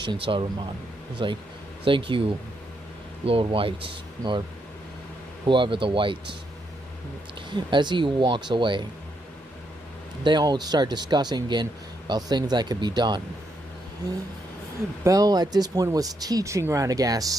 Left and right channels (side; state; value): both; normal; correlation 0.78